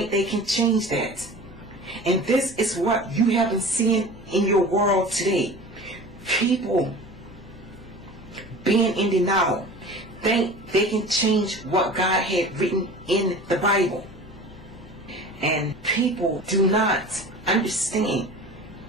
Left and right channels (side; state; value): both; normal; correlation 0.38